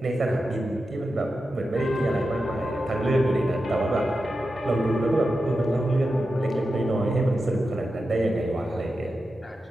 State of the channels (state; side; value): normal; both; correlation 0.90